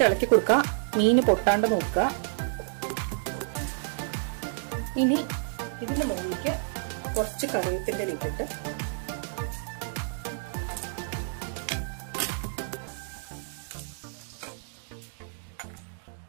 ഇളക്കി കൊടുക്കുക, മീന് പൊട്ടാണ്ട് നോക്കുക. ഇനി ഇതിന്റെ മുകളിലേക്ക് കുറച്ച് കറിവേപ്പിന്റെ ഇട്ടിട്ട്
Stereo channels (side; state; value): left; silent; digital silence